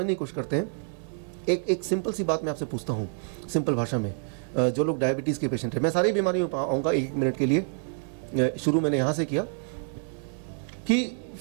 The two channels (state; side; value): silent; left; 58 dB below the other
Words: की कोशिश करते हैं। एक सिंपल सी बात मैं आपसे पूछता हूँ, सिंपल भाषा में। जो लोग डायबिटीज़ के पेशेंट हैं, मैं सारी बीमारियों पर आऊँगा एक मिनट के लिए। शुरू मैंने यहाँ से किया कि